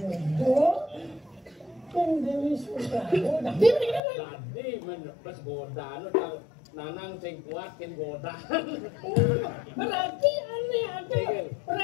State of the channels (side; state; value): right; drops out; at 4.0 s